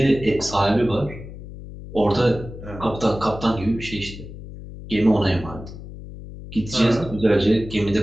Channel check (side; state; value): left; noise; hum, 13 dB below the sound